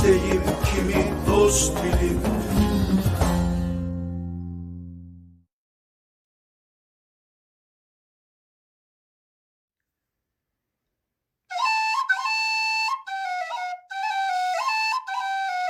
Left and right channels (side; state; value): both; identical; correlation 1.00